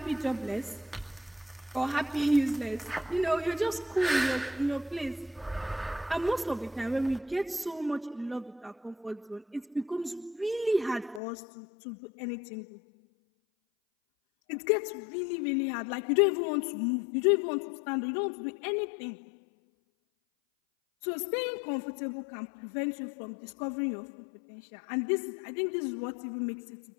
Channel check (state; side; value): drops out; right; at 11.2 s